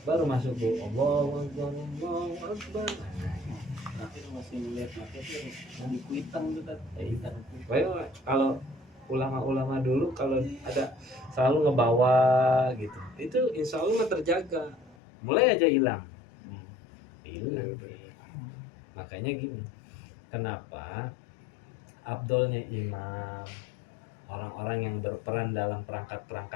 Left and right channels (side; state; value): right; drops out; at 15.0 s